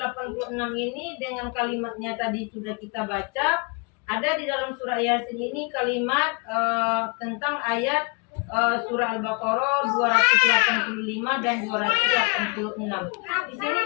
ini dengan kalimatnya tadi sudah kita baca. Ada di dalam surah Yasin ini kalimat tentang ayat surah Al-Baqarah 285 dan 286. Di sini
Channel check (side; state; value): right; quieter; 31.5 dB